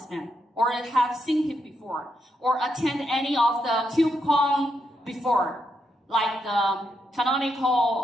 man? Or have seen him before? Or attend any of the KubeCon before? Like the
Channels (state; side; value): normal; both; correlation 0.81